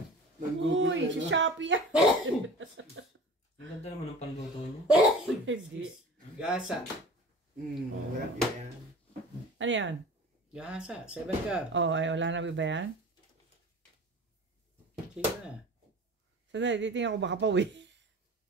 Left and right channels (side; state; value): both; normal; correlation 0.39